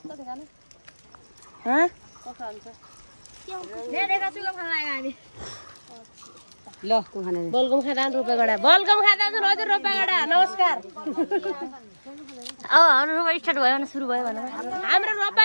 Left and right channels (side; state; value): both; inverted; correlation -1.00